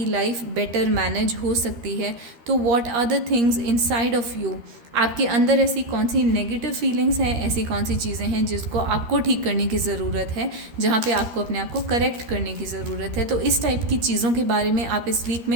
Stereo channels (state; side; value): late; left; 13 ms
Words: लाइफ बेटर मैनेज हो सकती है। तो what are the things inside of you, आपके अंदर ऐसी कौन सी नेगेटिव फीलिंग्स हैं, ऐसी कौन सी चीज़ें हैं जिसको आपको ठीक करने की ज़रूरत है, जहाँ पे आपको अपने आप को करेक्ट करने की ज़रूरत है। तो इस टाइप की चीज़ों के बारे में आप इस वीक